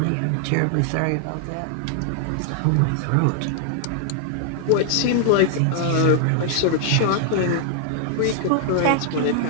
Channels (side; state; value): both; different; correlation 0.00